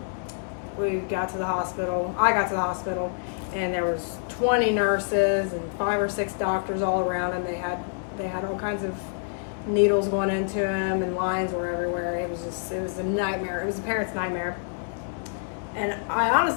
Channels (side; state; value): right; silent; 60 dB below the other